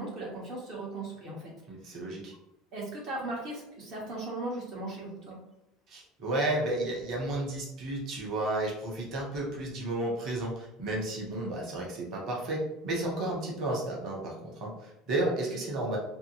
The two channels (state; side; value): normal; both; correlation 0.34